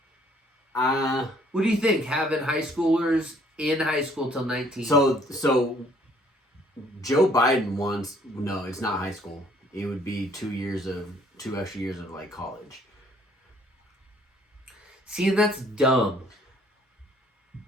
What do you think? Having high schoolers in high school till 19. So Joe Biden wants it's not high school. It would be 2 extra years of like college. See, and that's dumb.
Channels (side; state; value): both; normal; correlation 0.62